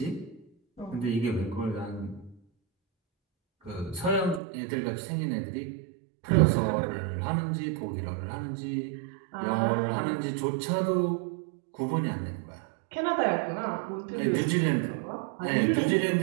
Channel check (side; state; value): left; drops out; at 4.4 s